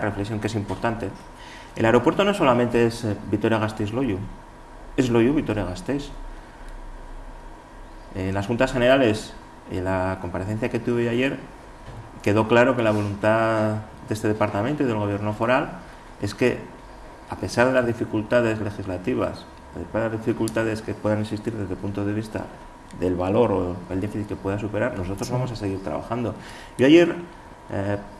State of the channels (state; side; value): identical; both; correlation 1.00